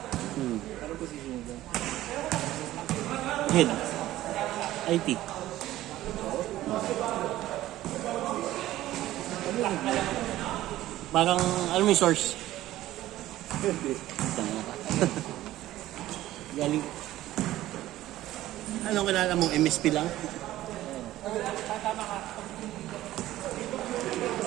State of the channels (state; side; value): quieter; left; 14.9 dB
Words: Hmm. Anong position niya? Head. IT. Parang, alam mo yung source? Tanga ka. Galing. Anong kilala mo? MSP lang?